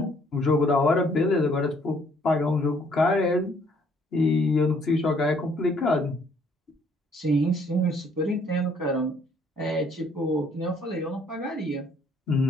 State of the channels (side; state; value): both; normal; correlation 0.64